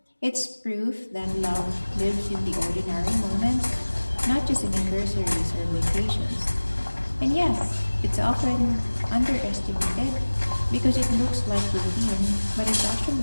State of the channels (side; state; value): both; inverted; correlation -1.00